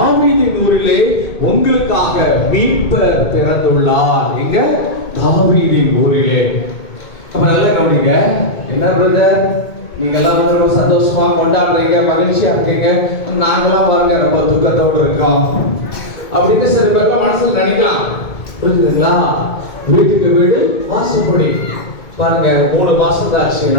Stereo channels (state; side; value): late; right; 2.2 ms